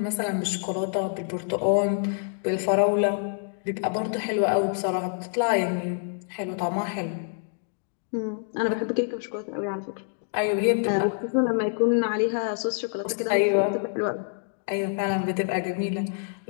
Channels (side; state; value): right; silent; digital silence